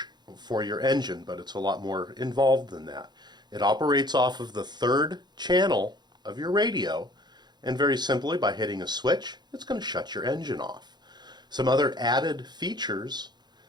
for your engine, but it's a lot more involved than that. It operates off of the third channel of your radio, and very simply, by hitting a switch, it's going to shut your engine off. Some other added features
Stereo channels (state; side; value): late; left; 0.21 ms